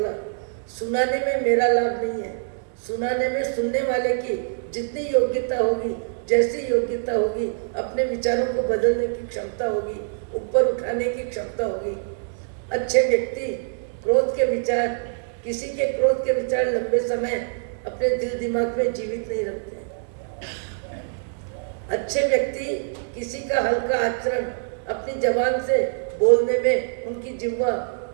सुनाने में मेरा लाभ नहीं है, सुनाने में सुनने वाले की जितनी योग्यता होगी, जैसी योग्यता होगी, अपने विचारों को बदलने की क्षमता होगी, ऊपर उठाने की क्षमता होगी। अच्छे व्यक्ति क्रोध के विचार, किसी के क्रोध के विचार लंबे समय अपने दिल दिमाग में जीवित नहीं रखते। अच्छे व्यक्ति किसी का हल्का आचरण अपनी जबान से बोलने में उनकी जिह्वा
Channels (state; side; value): silent; left; digital silence